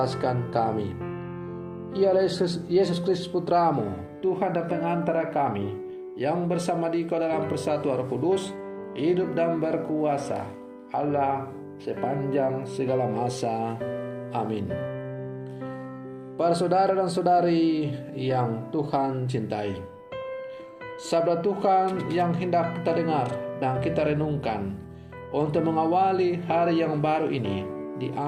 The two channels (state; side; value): identical; both; correlation 1.00